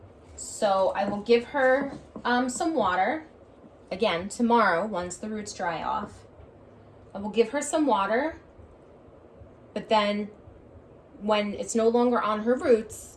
So I will give her some water, again, tomorrow, once the roots dry off. I will give her some water, but then when it's no longer on her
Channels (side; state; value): both; identical; correlation 1.00